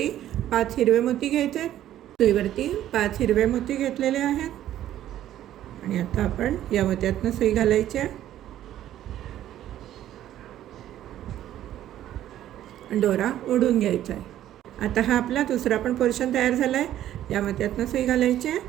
5 हिरवे मोती घ्यायचे आहेत. सुईवरती 5 हिरवे मोती घेतलेले आहेत आणि आता आपण या मोत्यातनं सुई घालायची आहे आणि दोरा ओढून घ्यायचा आहे. आता हा आपला दुसरा पण पोर्शन तयार झाला आहे. या मोत्यातनं सुई घालायची आहे,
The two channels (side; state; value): left; quieter; 12.3 dB